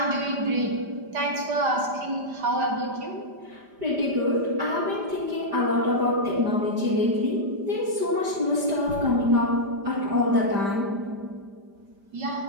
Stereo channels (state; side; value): late; left; 5.0 ms